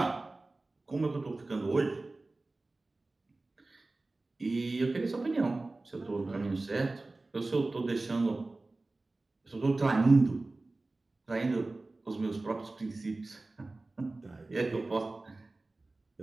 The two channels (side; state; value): left; quieter; 3.2 dB